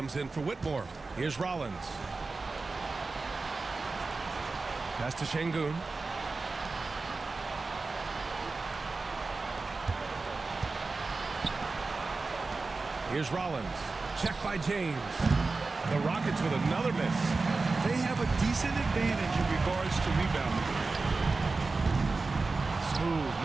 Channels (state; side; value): quieter; left; 3.8 dB